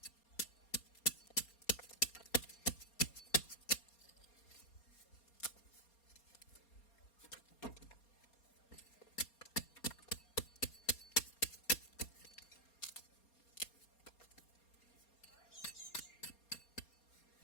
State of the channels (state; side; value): late; right; 4.3 ms